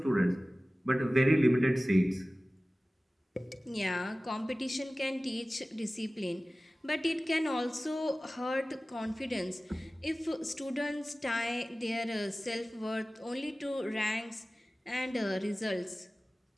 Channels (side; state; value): both; normal; correlation 0.97